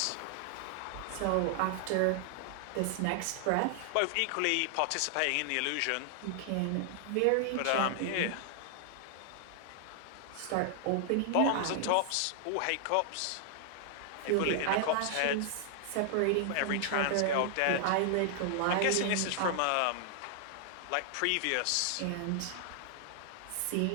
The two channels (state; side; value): different; both; correlation 0.00